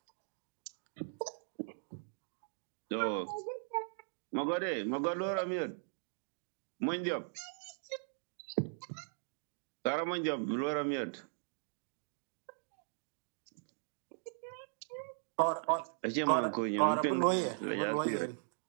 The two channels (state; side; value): silent; left; digital silence